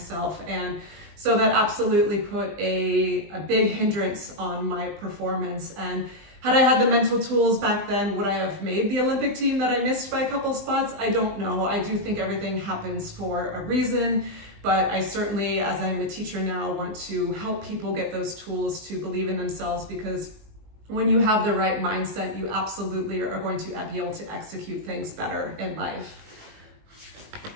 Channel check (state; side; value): late; left; 20 ms